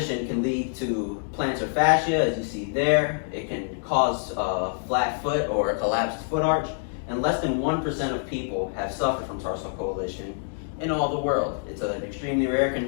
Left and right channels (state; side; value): silent; right; digital silence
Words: can lead to plantar fascia, as you see there. It can cause a flat foot or a collapsed foot arch, and less than 1% of people have suffered from tarsal coalition in all the world. It's an extremely rare